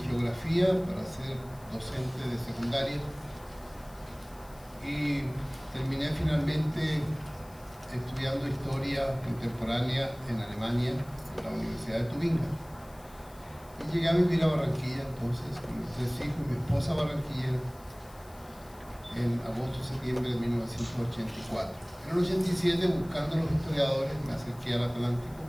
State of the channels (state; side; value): noise; left; hiss, 25 dB below the sound